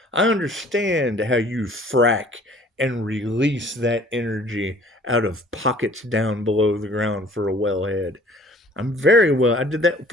I understand how you frack and release that energy out of pockets down below the ground for a wellhead. I did that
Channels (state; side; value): normal; both; correlation 0.52